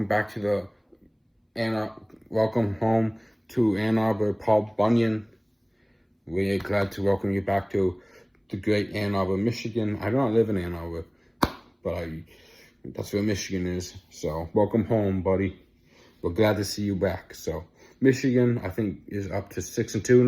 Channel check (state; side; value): identical; both; correlation 1.00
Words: back to welcome home to Ann Arbor, Paul Bunyan. We're glad to welcome you back to the great Ann Arbor, Michigan. I do not live in Ann Arbor, but that's where Michigan is. So welcome home, buddy. We're glad to see you back. So Michigan, I think, is up to 6-2